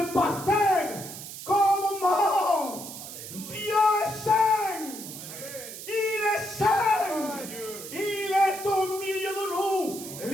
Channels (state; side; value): noise; right; hiss, 11 dB below the sound